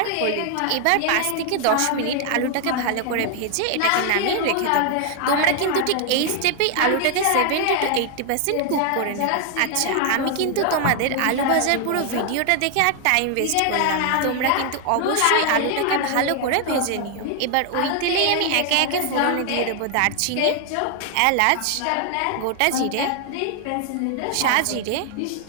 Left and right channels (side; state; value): both; different; correlation 0.00